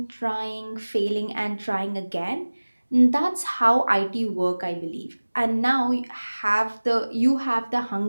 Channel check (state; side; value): inverted; both; correlation -1.00